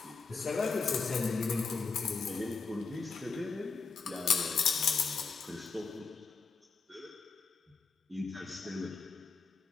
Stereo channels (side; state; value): right; quieter; 4.9 dB